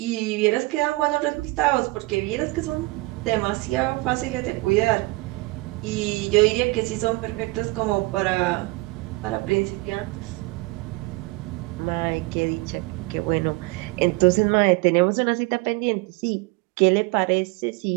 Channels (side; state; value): left; quieter; 23.8 dB